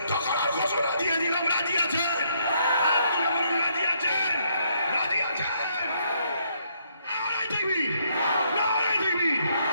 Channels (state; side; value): inverted; both; correlation -0.71